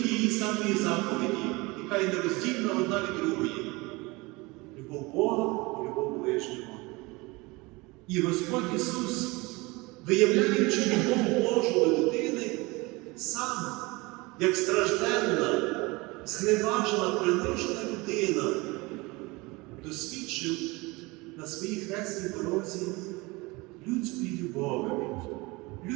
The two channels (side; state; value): left; quieter; 24.1 dB